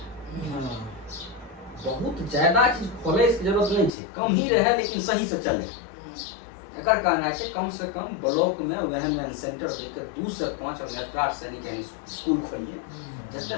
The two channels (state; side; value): drops out; right; at 3.9 s